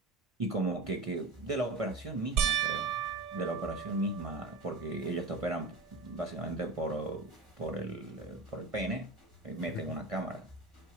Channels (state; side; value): quieter; left; 3.2 dB